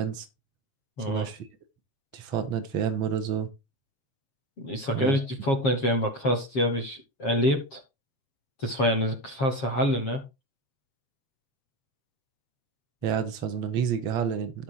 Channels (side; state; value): right; late; 7.4 ms